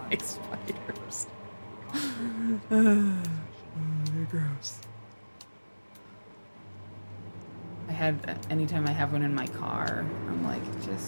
like spiders. They're gross. Anytime I have one in my car, I'm like,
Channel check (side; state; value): both; inverted; correlation -1.00